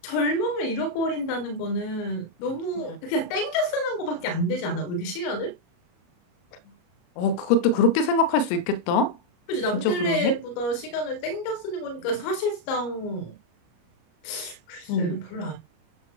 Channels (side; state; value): right; late; 33 ms